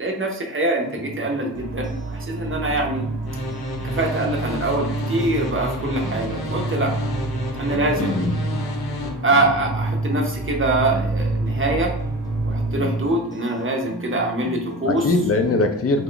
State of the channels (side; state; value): both; normal; correlation 0.31